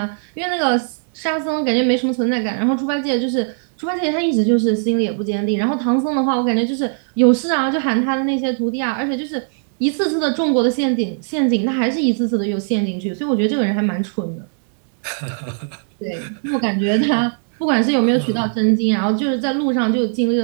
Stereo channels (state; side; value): silent; left; digital silence